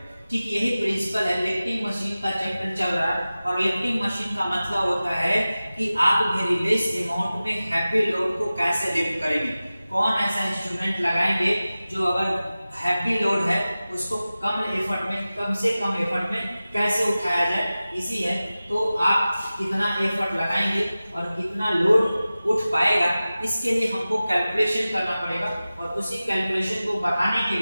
ठीक यही प्रिंसिपल है, लिफ्टिंग मशीन का चैप्टर चल रहा है और लिफ्टिंग मशीन का मतलब होता है कि आप वेरी लेस अमाउंट में हैवी लोड को कैसे लिफ्ट करेंगे, कौन ऐसा इंस्ट्रूमेंट लगाएंगे जो अगर हैवी लोड है उसको कम से कम एफर्ट में कैसे उठाया जाए, इसी है। तो आप कितना एफर्ट लगाएंगे और कितना लोड उठ पाएगा, इसके लिए हमको कैलकुलेशन करना पड़ेगा। और उसी कैलकुलेशन को बढ़ाने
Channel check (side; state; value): both; inverted; correlation -0.96